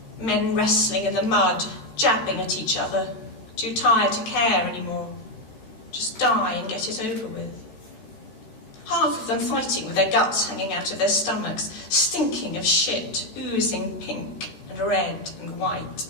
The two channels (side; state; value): right; late; 13 ms